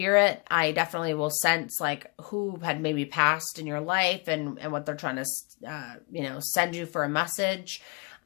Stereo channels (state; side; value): quieter; right; 29.7 dB